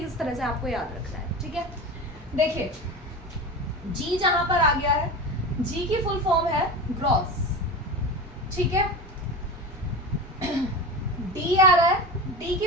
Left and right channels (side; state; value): both; normal; correlation 0.27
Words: किस तरह से आपको याद रखना है। ठीक है, देखिए जी जहां पर आ गया है, जी की फुल फॉर्म है ग्रॉस। ठीक है, डी आ रहा है, डी